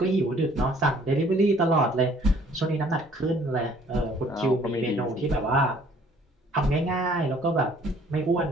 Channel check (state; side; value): normal; both; correlation 0.58